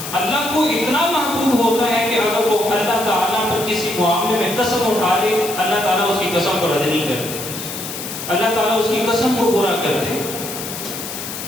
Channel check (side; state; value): left; noise; hiss, 8 dB below the sound